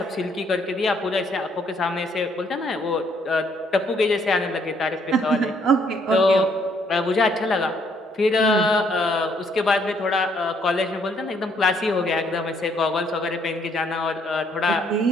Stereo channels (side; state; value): both; normal; correlation 0.68